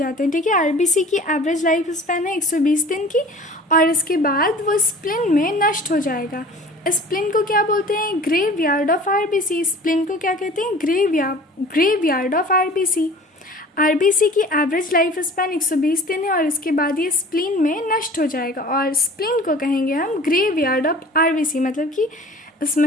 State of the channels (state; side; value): normal; both; correlation 0.44